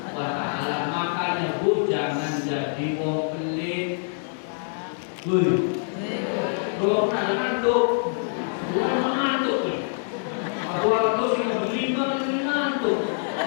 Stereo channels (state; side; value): silent; right; digital silence